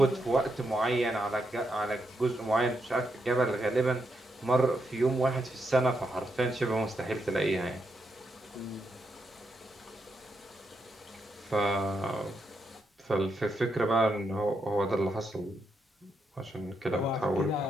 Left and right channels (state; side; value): normal; both; correlation 0.82